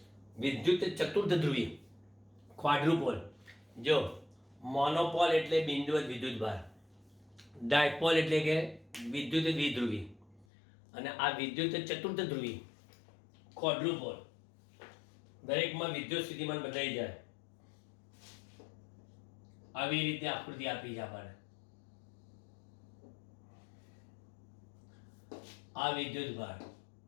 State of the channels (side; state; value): right; drops out; at 10.5 s